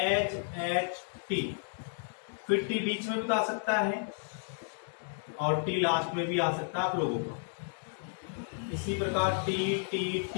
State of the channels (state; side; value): silent; right; digital silence